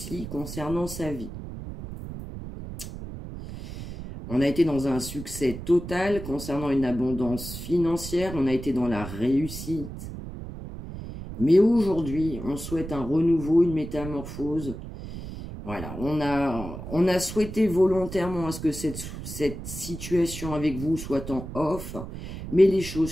concernant sa vie. On a été dans un succès total concernant une abondance financière, on a été dans la réussite. Mais aujourd'hui, on souhaite un renouveau, une métamorphose. Voilà, on a souhaité volontairement à ce que cette situation avec vous soit en off, mais les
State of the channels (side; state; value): right; noise; rumble, 10 dB below the sound